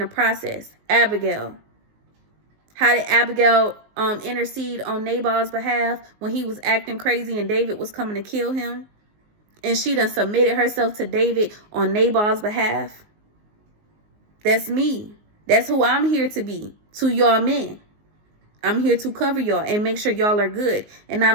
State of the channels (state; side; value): late; left; 19 ms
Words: process. Abigail. How did Abigail intercede on Nabal's behalf when he was acting crazy and David was coming to kill him? And she done submitted herself to David on Nabal's behalf. That's me. That's who I'm here to be to y'all men. I'm here to cover y'all and make sure y'all are good. And I